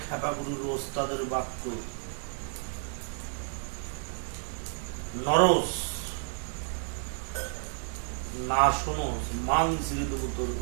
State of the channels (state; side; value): silent; left; 57 dB below the other